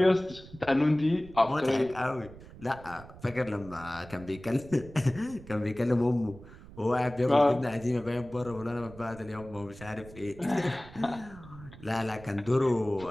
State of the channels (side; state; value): right; noise; rumble, 18 dB below the sound